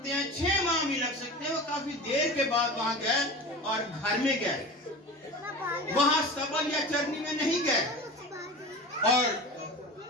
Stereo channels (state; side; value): normal; both; correlation 0.33